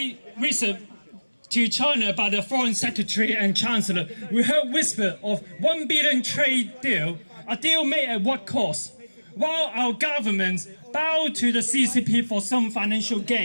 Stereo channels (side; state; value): both; inverted; correlation -1.00